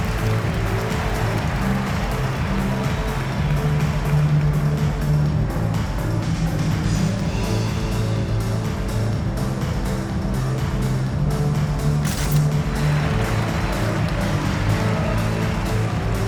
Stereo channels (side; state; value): both; identical; correlation 1.00